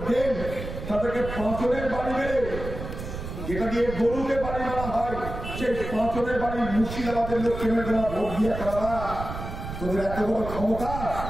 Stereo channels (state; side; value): noise; right; rumble, 8 dB below the sound